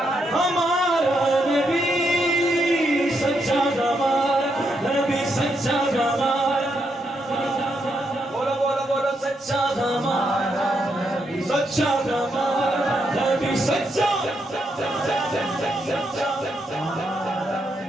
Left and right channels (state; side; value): normal; both; correlation 0.80